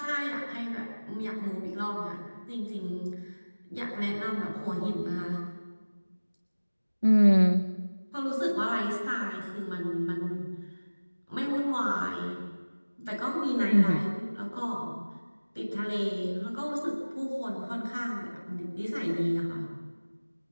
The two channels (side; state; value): both; inverted; correlation -1.00